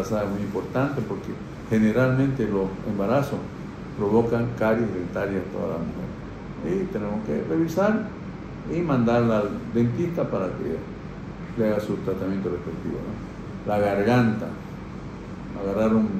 es muy importante porque generalmente los embarazos provocan caries dentarias a toda la mujer. Y tenemos que revisar y mandarla al dentista para que le haga su tratamiento respectivo, ¿no? La garganta, agarrar un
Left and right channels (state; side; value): identical; both; correlation 1.00